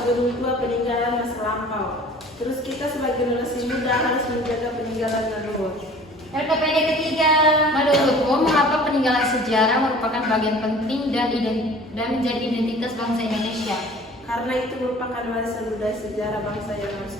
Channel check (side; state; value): both; normal; correlation 0.47